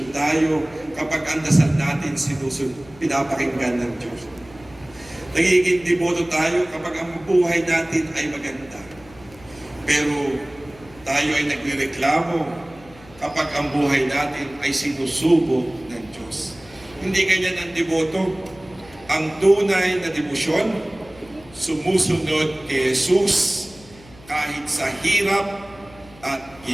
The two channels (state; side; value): noise; left; hum, 23 dB below the sound